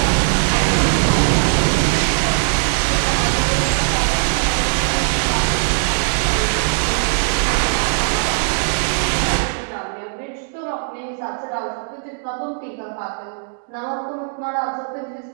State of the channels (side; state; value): left; silent; 66 dB below the other